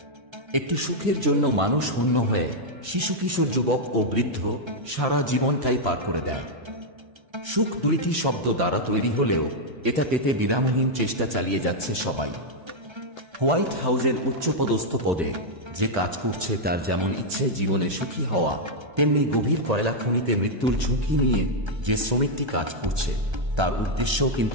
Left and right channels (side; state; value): left; late; 1.3 ms